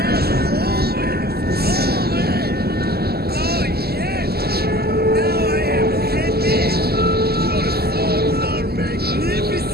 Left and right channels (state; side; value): late; left; 0.46 ms